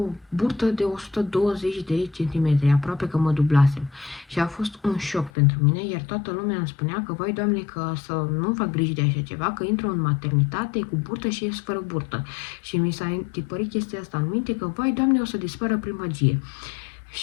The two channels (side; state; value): right; drops out; at 5.3 s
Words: burtă de 120 de centimetri, aproape că mă dublasem. Și a fost un șoc pentru mine, iar toată lumea îmi spunea că, vai Doamne, că să nu fac griji de așa ceva, că intru în maternitate cu burtă și ies fără burtă. Și mi s-a tipărit chestia asta în minte că, vai Doamne, o să dispară primăgie.